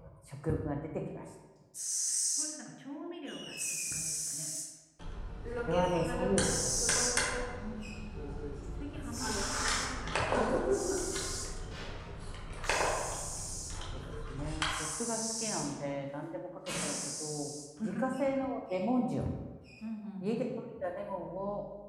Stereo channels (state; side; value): identical; both; correlation 1.00